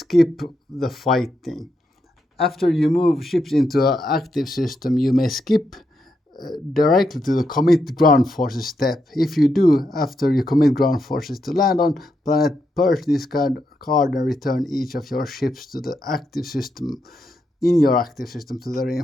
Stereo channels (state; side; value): normal; both; correlation 0.82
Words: the fighting. After you move ships into an active system, you may skip directly to the commit ground forces step. If you do, after you commit ground forces to land on planet, purge this card and return each of your ships to the active system, in your active system, to the